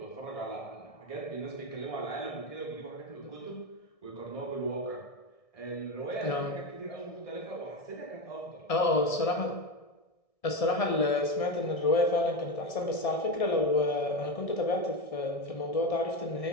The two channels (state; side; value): late; right; 1.6 ms